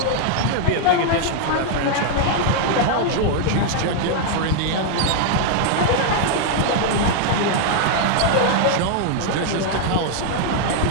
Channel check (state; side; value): different; both; correlation 0.00